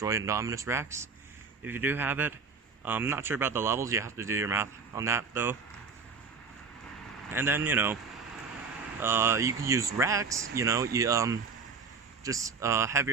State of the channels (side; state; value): left; quieter; 5.1 dB